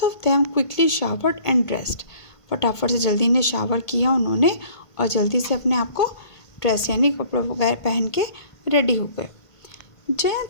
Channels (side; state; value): right; late; 1.5 ms